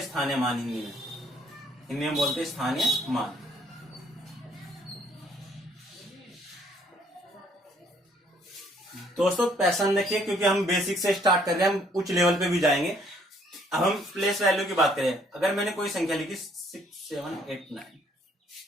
स्थानीय मान। हिंदी में बोलते हैं स्थानीय मान। दोस्तों पैसन देखिए, क्योंकि हम बेसिक से स्टार्ट कर रहे हैं, हम उच्च लेवल पे भी जाएंगे। अब हम प्लेस वैल्यू की बात करें। अगर मैंने कोई संख्या लिखी 6 7 8 9,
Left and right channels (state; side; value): normal; both; correlation 0.64